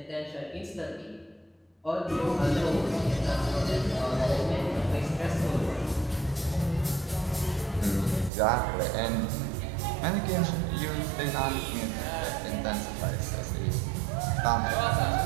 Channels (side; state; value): left; drops out; at 8.3 s